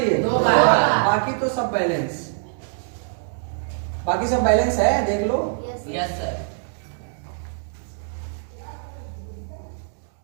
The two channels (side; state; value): left; silent; digital silence